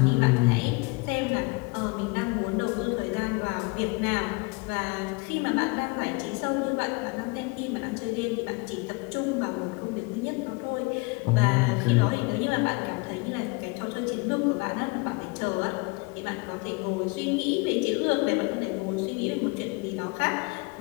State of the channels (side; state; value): right; quieter; 28.0 dB